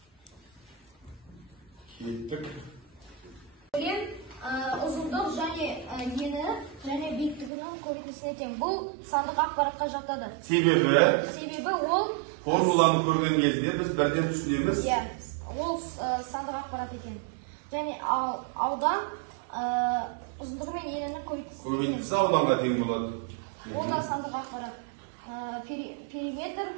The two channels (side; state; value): left; drops out; at 7.5 s